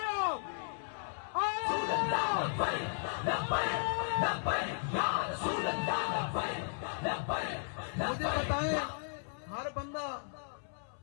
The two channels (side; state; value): right; silent; 54 dB below the other